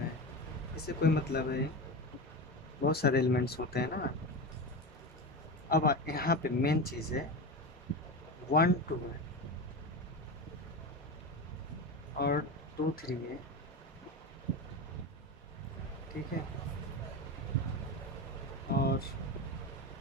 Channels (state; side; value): normal; both; correlation 0.22